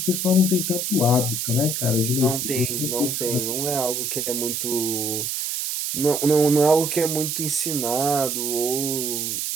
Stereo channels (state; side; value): noise; right; hiss, 1 dB below the sound